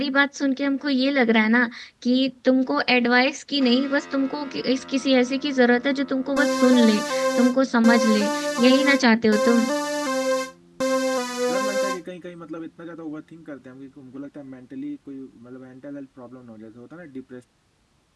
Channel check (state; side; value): identical; both; correlation 1.00